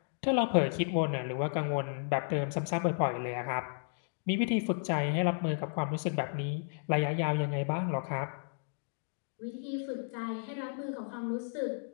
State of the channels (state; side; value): silent; right; digital silence